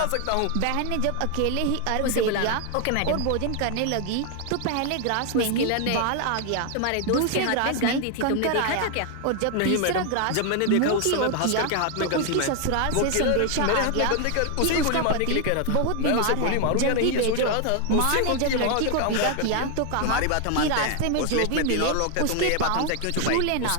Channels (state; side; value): different; both; correlation 0.01